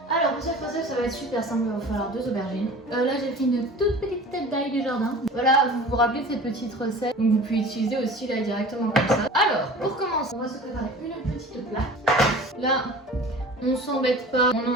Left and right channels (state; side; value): normal; both; correlation 0.41